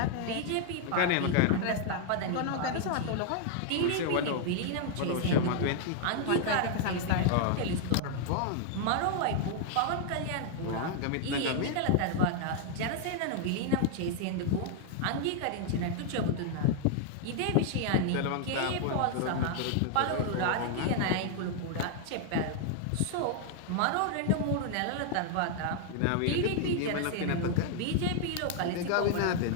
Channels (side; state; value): both; different; correlation 0.00